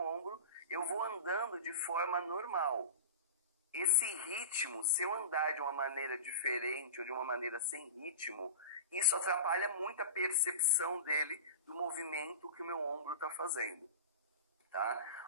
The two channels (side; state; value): both; inverted; correlation -0.30